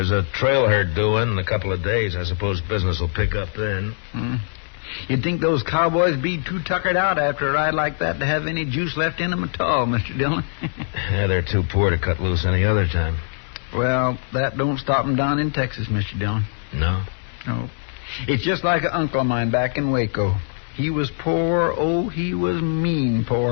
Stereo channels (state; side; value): silent; right; digital silence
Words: a trail herd due in a couple of days. I suppose business will pick up then. You'd think those cowboys be too tuckered out after a ride like that to have any juice left in them at all, Mr. Dillon. Yeah, they're too poor to cut loose any other time. Well, that don't stop them down in Texas, Mr. Dillon. No? No. It's just like an uncle of mine back in Waco. He was poor, oh, he was mean